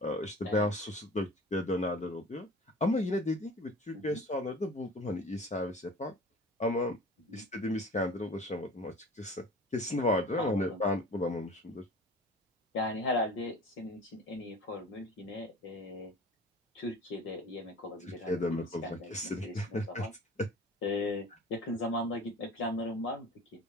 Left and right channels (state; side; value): normal; both; correlation 0.42